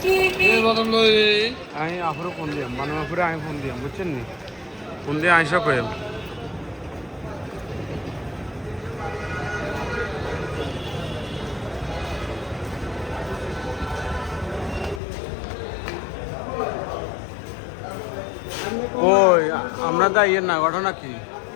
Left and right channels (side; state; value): right; drops out; at 15.0 s